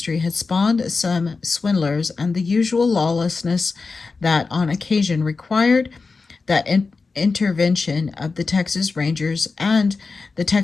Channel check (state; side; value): quieter; right; 4.3 dB